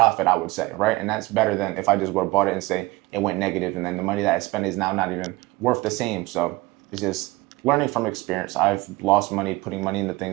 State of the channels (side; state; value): left; quieter; 20.7 dB